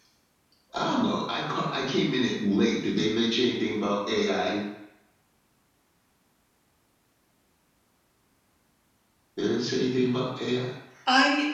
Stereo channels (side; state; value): both; identical; correlation 1.00